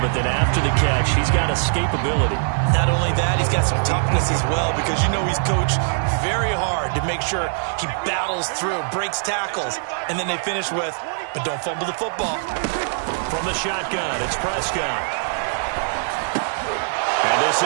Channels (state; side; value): silent; left; digital silence